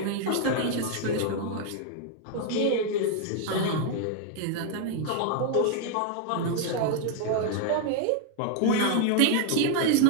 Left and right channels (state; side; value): different; both; correlation 0.00